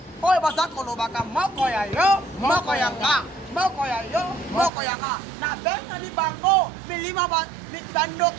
oyo bazakolobaka moko ya yo moko ya nga moko ya yo moko ya nga na bengani bango milima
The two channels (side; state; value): left; drops out; at 4.7 s